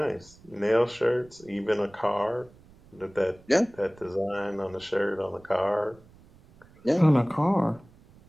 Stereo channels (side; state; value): right; noise; rumble, 26 dB below the sound